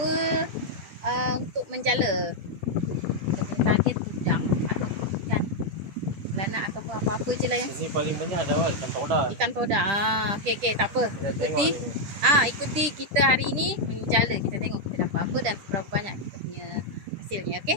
untuk menjala. Untuk target udang atau ikan belanak ataupun apa-apa je lah yang ini paling banyak ada ikan toda. Ikan toda. Okey, tak apa. Ikuti kita hari ini menjala. Kita tengok kita dapat apa dan berapa banyak kita punya hasilnya,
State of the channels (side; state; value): left; late; 10 ms